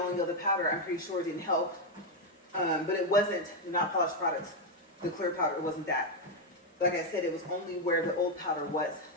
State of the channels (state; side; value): normal; both; correlation 0.03